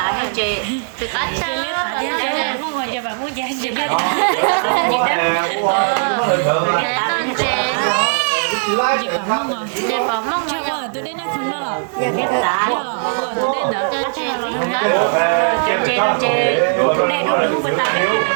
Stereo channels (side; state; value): left; silent; 55 dB below the other